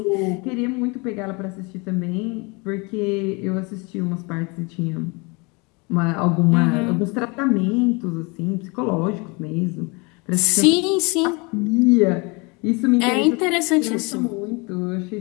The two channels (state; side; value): quieter; right; 28.7 dB